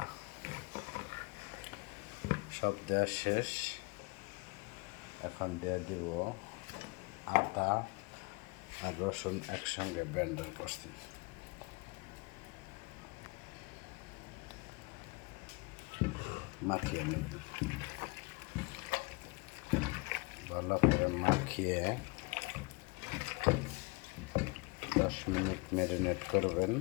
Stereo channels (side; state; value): right; quieter; 26.7 dB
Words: সব দেওয়া শেষ। এখন দিয়ে দিব আদা আর রসুন একসঙ্গে ব্লেন্ডার করছি। মাখিয়ে নেব, ভালো করে মাখিয়ে 10 মিনিট ম্যারিনেট করবেন।